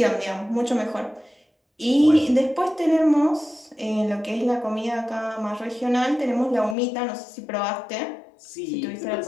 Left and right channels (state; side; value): drops out; right; at 6.8 s